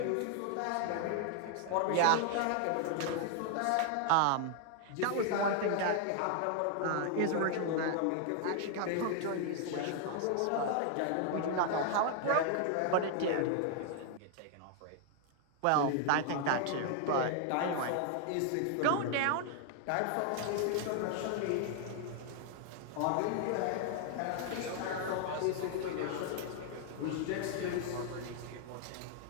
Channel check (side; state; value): both; different; correlation 0.00